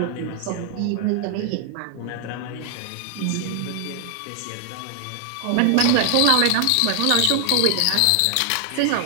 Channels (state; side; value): different; both; correlation 0.00